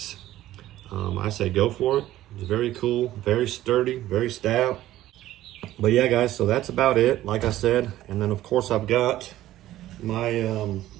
I say go for it. It's very cool, very sturdy, very stout. But yeah, guys, so that's about it, like I said. And then of course I've got my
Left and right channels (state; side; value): quieter; left; 14.3 dB